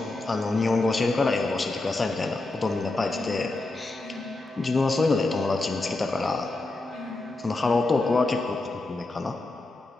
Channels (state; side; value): quieter; right; 3.0 dB